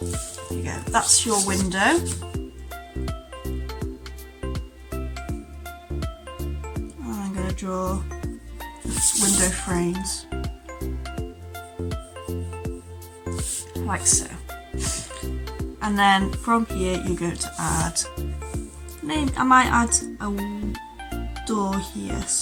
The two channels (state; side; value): identical; both; correlation 1.00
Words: There you go, that's your window. And I'm going to draw window frames, like so. And then from here you're going to add, I might add a door here,